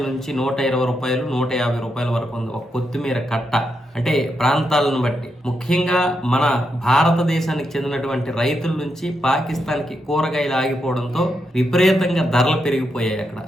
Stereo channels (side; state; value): both; normal; correlation 0.83